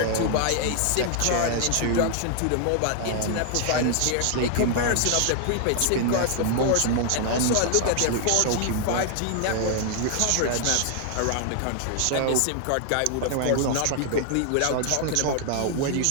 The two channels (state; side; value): different; both; correlation 0.00